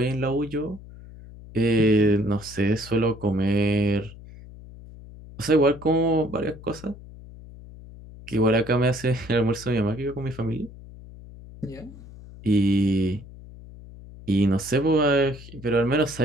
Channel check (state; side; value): noise; left; hum, 17 dB below the sound